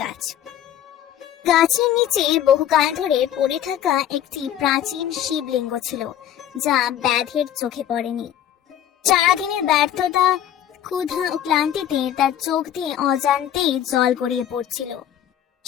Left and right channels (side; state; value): right; quieter; 10.8 dB